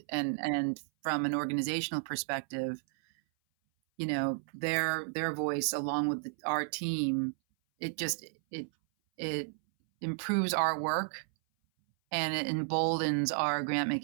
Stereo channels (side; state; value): left; silent; 56 dB below the other